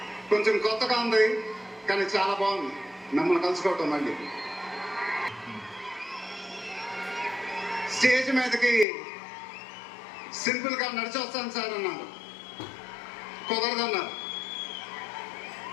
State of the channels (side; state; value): right; drops out; at 8.8 s